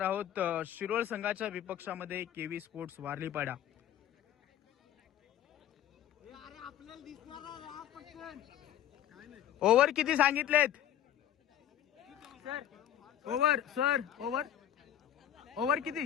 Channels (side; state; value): right; quieter; 11.2 dB